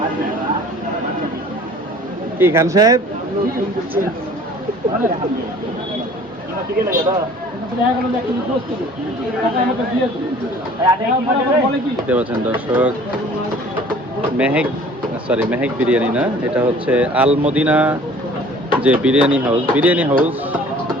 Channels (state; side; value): normal; both; correlation 0.50